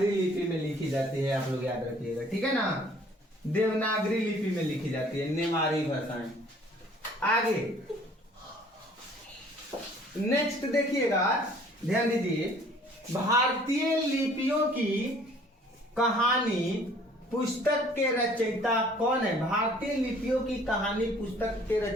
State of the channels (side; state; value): both; normal; correlation 0.55